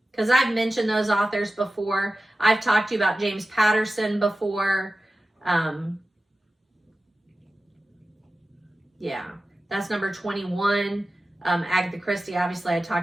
because I've mentioned those authors before. I've talked to you about James Patterson before. Yeah, that's number 21. Agatha Christie, obviously I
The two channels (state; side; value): normal; both; correlation 0.94